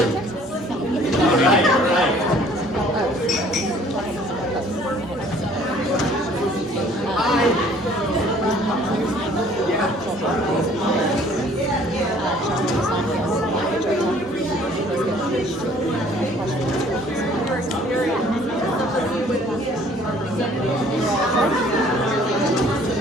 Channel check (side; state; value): both; normal; correlation 0.56